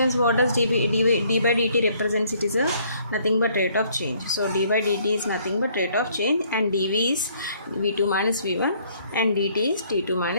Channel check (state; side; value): inverted; both; correlation -0.63